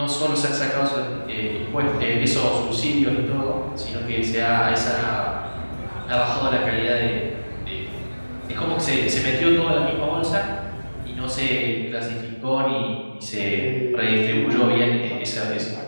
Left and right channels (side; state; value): both; inverted; correlation -1.00